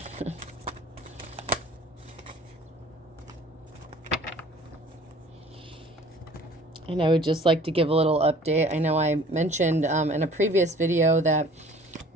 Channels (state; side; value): normal; both; correlation 0.49